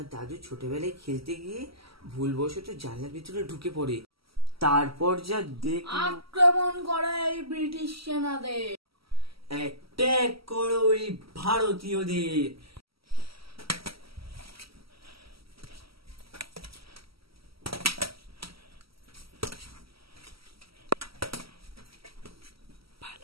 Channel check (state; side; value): late; left; 0.75 ms